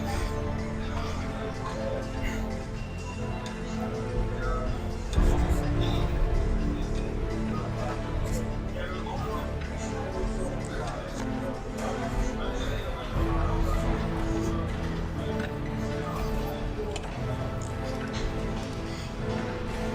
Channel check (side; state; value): both; identical; correlation 1.00